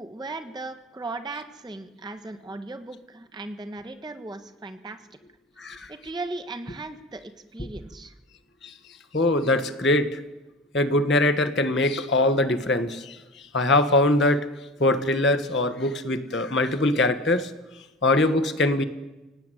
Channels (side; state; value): both; normal; correlation 0.33